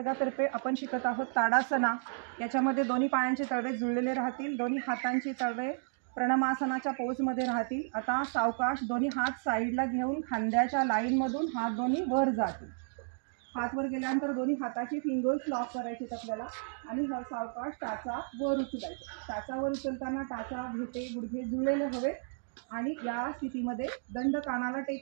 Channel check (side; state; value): left; silent; digital silence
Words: आपण शिकत आहोत ताडासना। याच्यामध्ये दोन्ही पायांचे तळवे जुळलेले राहतील, दोन्ही हातांचे तळवे प्रणमासनाच्या पोजमध्ये राहतील। आता सावकाश दोन्ही हात साईडला घेऊन खांद्याच्या लाईनमधून हात दोन्ही वर जातील। हात वर गेल्यानंतर दोन्ही हाताची फिंगर्स लॉक करायचे आपल्याला आणि सावकाश टाचा वर उचलायचा। टाचा वर उचलताना टाचा घेते गुडघे जुळलेले हवे आणि या स्थितीमध्ये दंड कानाला